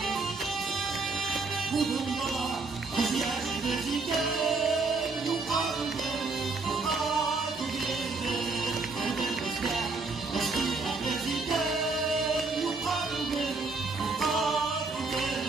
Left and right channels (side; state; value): left; quieter; 3.9 dB